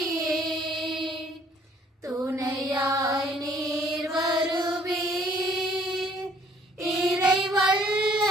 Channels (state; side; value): normal; both; correlation 0.60